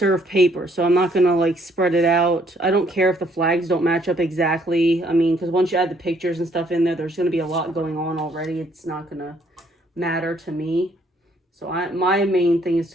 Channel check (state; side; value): normal; both; correlation 0.66